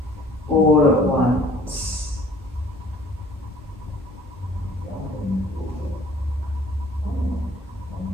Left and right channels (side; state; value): both; normal; correlation 0.54